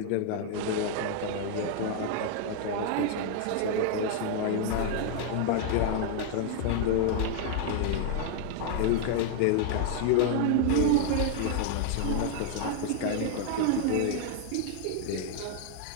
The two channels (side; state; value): both; different; correlation 0.00